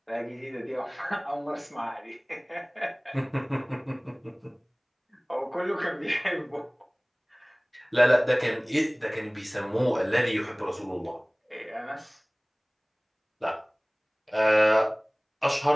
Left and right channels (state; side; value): identical; both; correlation 1.00